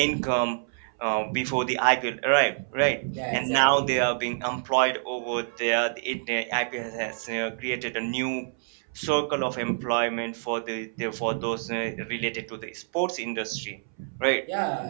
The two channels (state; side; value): silent; left; 60 dB below the other